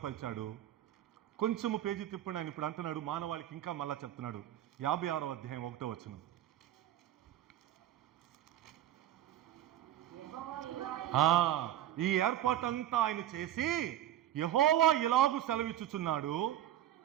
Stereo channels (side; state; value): left; quieter; 12.2 dB